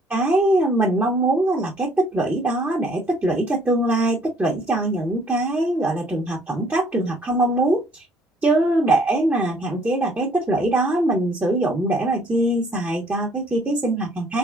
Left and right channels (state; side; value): normal; both; correlation 0.61